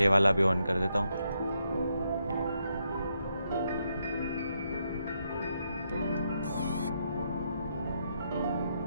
वाला भी ऑन कर देता हूँ।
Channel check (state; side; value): inverted; both; correlation -0.79